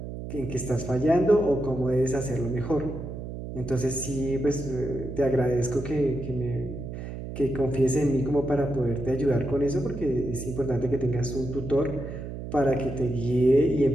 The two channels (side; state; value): right; noise; hum, 8 dB below the sound